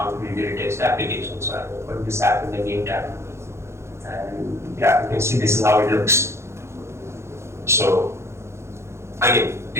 to really test the application. So I open this app in the new tab, and yeah, you can see this is how it looks. So again,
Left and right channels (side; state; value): left; late; 0.13 ms